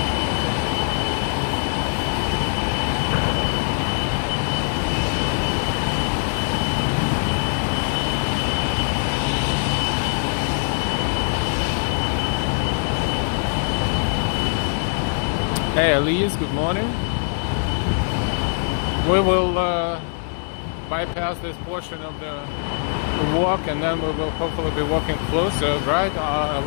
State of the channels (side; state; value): right; silent; 64 dB below the other